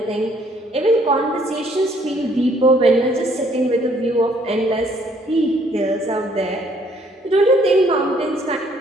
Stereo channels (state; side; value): normal; both; correlation 0.64